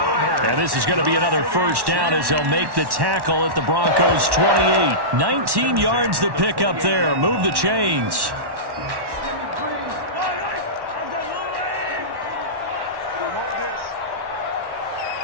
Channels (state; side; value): late; left; 1.1 ms